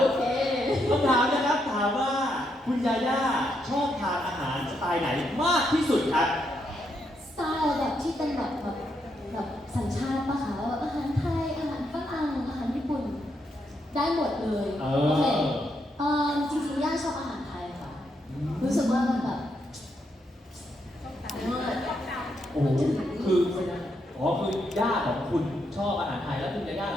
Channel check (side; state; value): both; normal; correlation 0.79